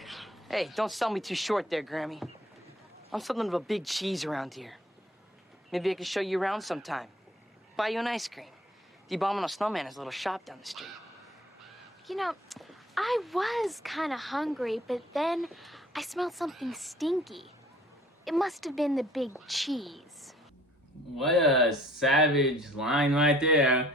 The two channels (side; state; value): both; normal; correlation 0.55